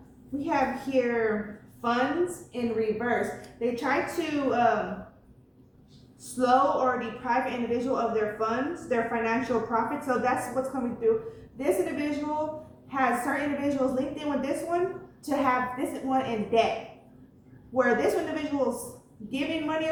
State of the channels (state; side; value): identical; both; correlation 1.00